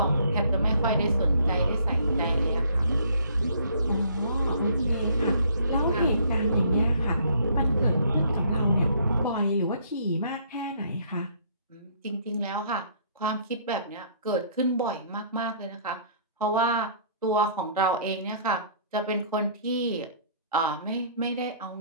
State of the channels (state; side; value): inverted; both; correlation -0.60